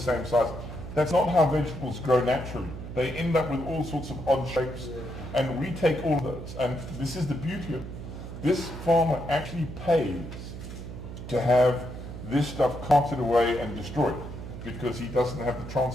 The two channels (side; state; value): right; noise; hum, 10 dB below the sound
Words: size. That's not how vegetables grow naturally. They end up with all sorts of odd shapes, and we take all of those. And this is the beauty of it. This farmer actually pays to have this stuff carted away and destroyed because he doesn't have the